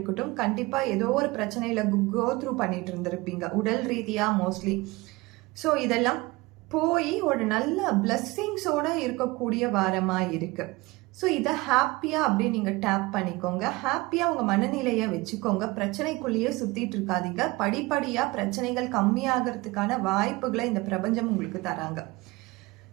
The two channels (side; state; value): left; quieter; 22.2 dB